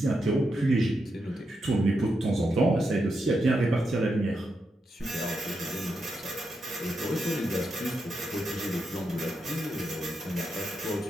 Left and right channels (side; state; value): both; normal; correlation 0.84